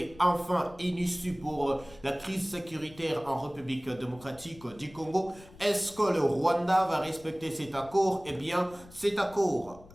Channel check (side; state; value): left; noise; rumble, 21 dB below the sound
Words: enfin une issue pour la crise sécuritaire en République démocratique du Congo? Est-ce que le Rwanda va respecter cet accord? Eh bien, cet accord